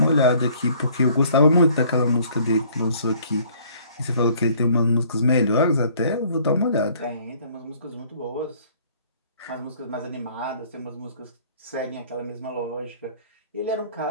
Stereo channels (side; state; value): both; inverted; correlation -0.58